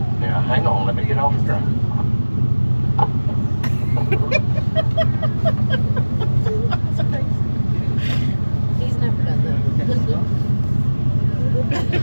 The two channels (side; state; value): both; inverted; correlation -1.00